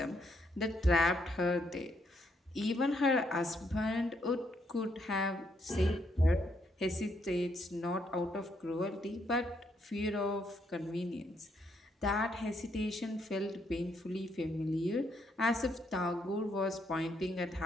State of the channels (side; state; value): both; normal; correlation 0.74